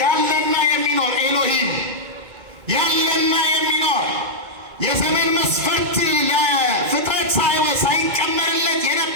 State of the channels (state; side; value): late; left; 2.2 ms